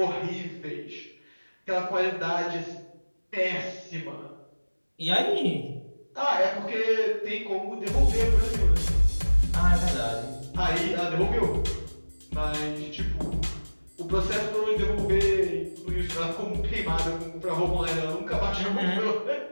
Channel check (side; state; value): both; inverted; correlation -1.00